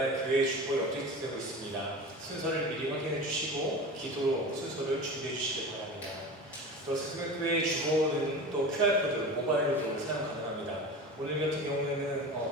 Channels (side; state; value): both; normal; correlation 0.32